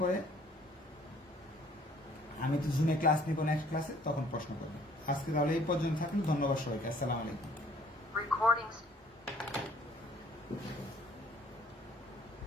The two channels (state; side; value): normal; both; correlation 0.58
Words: করে, আমি তো জুমে ক্লাস নিব নেক্সট ক্লাসে, তখন প্রশ্ন করবেন। আজকে তাহলে এই পর্যন্ত থাকলো। ধন্যবাদ সবাইকে। আসসালামু আলাইকুম। Recording